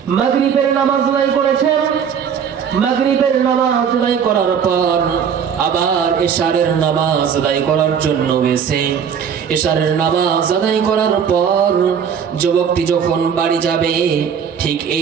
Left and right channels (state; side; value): quieter; left; 7.5 dB